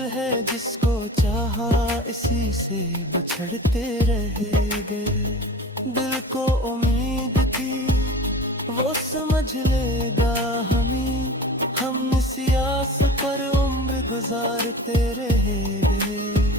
है, जिसको चाहा इसी से बिछड़ते रह गए। दिल को उम्मीद थी वो समझ लेगा हमें, हम इसी आस पर उम्र गुजारते रह गए।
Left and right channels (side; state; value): both; normal; correlation 0.37